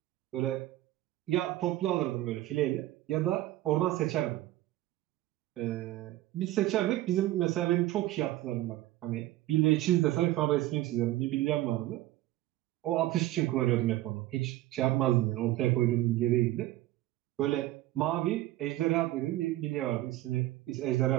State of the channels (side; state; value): left; quieter; 15.7 dB